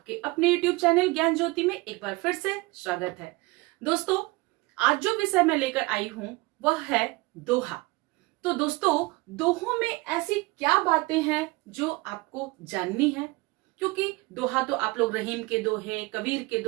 अपने YouTube चैनल ज्ञान ज्योति में एक बार फिर से स्वागत है। दोस्तों, आज जो विषय मैं लेकर आई हूँ वह है दोहा। तो दोस्तों, दोहों में ऐसी क्या बातें हैं जो आपको जाननी है? क्योंकि दोहा तो आप लोग रहीम के दोहे, कबीर के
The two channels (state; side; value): quieter; left; 23.4 dB